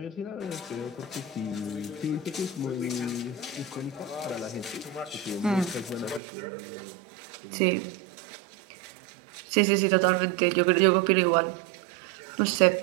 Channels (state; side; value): drops out; left; at 6.2 s